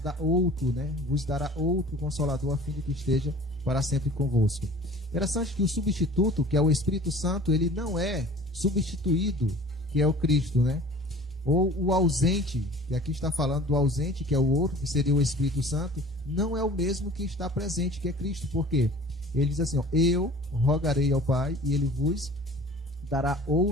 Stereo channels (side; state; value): both; normal; correlation 0.45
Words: outro, né? Vos dará outro consolador, a fim de que esteja para sempre convosco. Interessante que o substituto, que é o Espírito Santo, ele não é substituído, que é o Cristo, né? Ou o ausente, que aqui está falando do ausente, que é o outro, que seria o Espírito Santo, não é o mesmo que está presente, que é Cristo. Por quê? Ele diz assim, eu rogarei ao Pai e ele vos dará